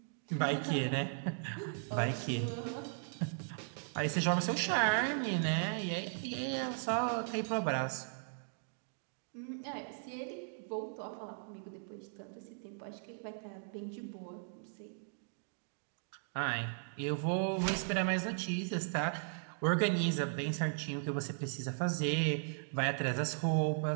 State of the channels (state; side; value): silent; left; digital silence